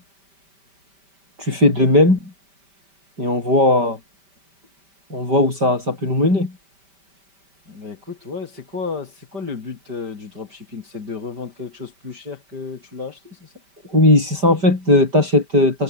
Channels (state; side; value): late; left; 5.1 ms